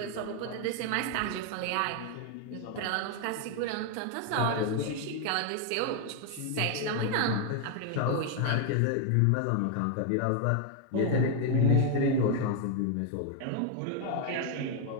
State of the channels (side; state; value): both; different; correlation 0.00